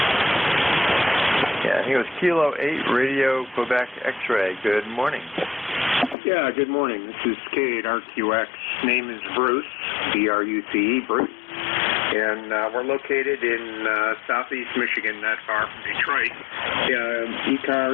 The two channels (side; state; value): right; drops out; at 6.2 s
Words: Yeah, I think it was Kilo 8 Radio, Quebec X-Ray. Good morning. Yeah, good morning. This is K8RQX. Name is Bruce, B-R-U-C-E, Bruce. And we're located in southeast Michigan, not far from Detroit.